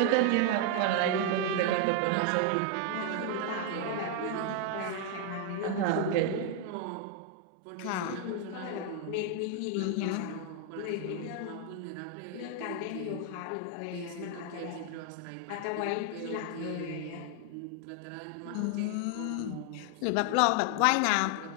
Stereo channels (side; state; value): both; different; correlation 0.00